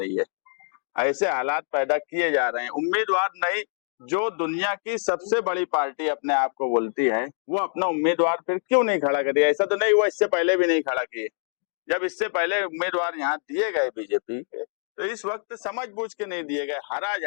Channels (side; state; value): right; silent; digital silence